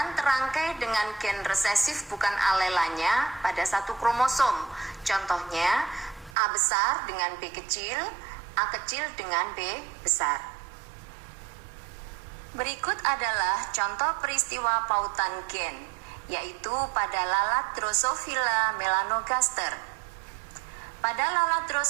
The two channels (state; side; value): drops out; left; at 6.4 s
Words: terangkai dengan gen resesif bukan alelanya pada satu kromosom. Contohnya A besar dengan B kecil, A kecil dengan B besar. Berikut adalah contoh peristiwa pautan gen, yaitu pada lalat Drosophila melanogaster. Pada lalat